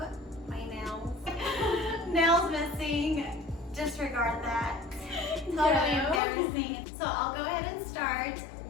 my nails. Nails missing. Disregard that. Totally embarrassing. So I'll go ahead and start.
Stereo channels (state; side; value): drops out; right; at 6.2 s